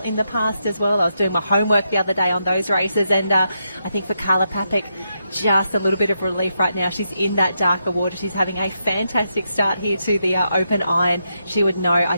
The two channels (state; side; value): inverted; both; correlation -0.83